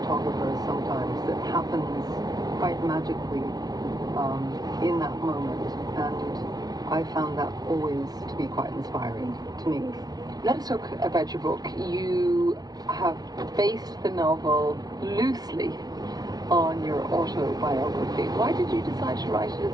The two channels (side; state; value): left; late; 0.19 ms